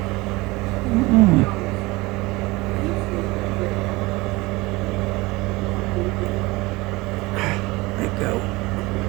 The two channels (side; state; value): left; quieter; 22.2 dB